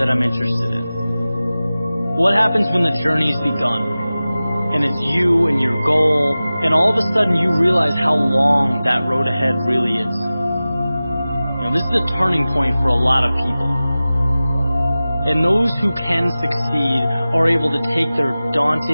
I'm interested in. What happens when the journey's begun? And it's you and your goal, and all of a sudden you realize how long that road ahead really is. This is a turning point for a lot of people. And those who can succeed are able to take their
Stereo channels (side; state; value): both; inverted; correlation -0.96